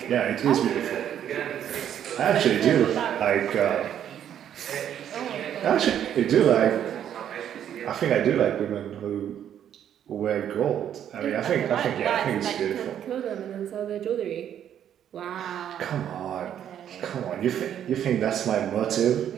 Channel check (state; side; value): quieter; left; 9.9 dB